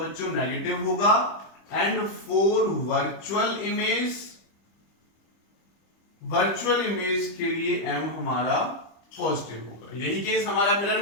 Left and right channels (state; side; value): late; right; 25 ms